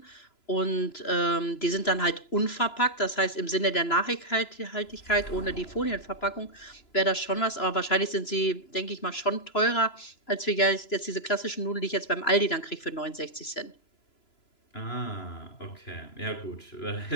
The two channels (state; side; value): late; right; 3.0 ms